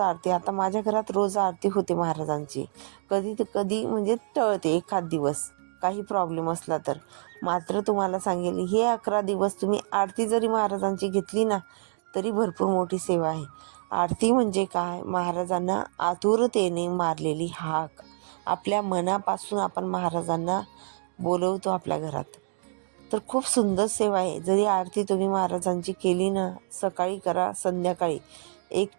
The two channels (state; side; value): silent; left; digital silence